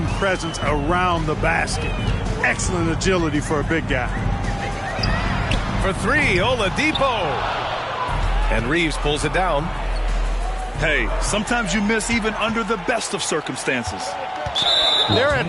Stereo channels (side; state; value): both; identical; correlation 1.00